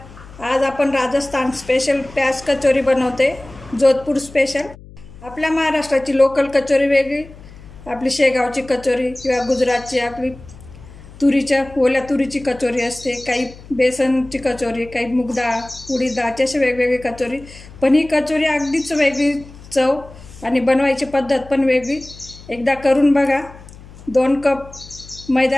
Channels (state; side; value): noise; left; hum, 19 dB below the sound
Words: आज आपण राजस्थान स्पेशल प्याज कचोरी बनवते, जोधपुर स्पेशल। आपल्या महाराष्ट्राची लोकल कचोरी वेगळी, आपली शेगावची कचोरी किंवा गुजरातची आपली ओल्या तुरीची कचोरी असते, काही बेसनची कचोरी, काही मूग डाळ, उडीद डाळची, अशी वेगवेगळी कचोरी। पण ही कचोरी अगदीच वेगळी चव आणि बनवायची पद्धत पण वेगळी। एकदा करून बघा। 2 कप